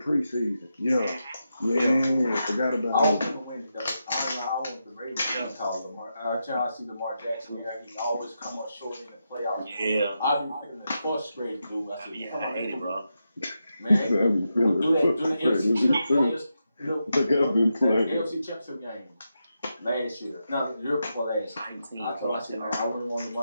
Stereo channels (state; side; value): inverted; both; correlation -0.86